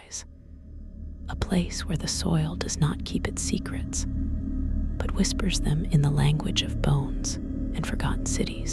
a place where the soil does not keep its secrets, but whispers them in the language of bones and forgotten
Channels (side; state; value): both; identical; correlation 1.00